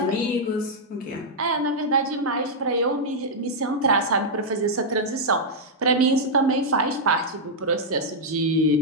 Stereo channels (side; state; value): both; normal; correlation -0.05